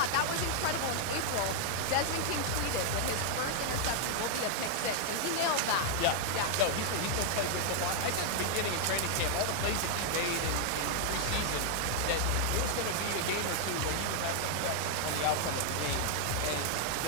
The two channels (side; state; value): both; different; correlation -0.01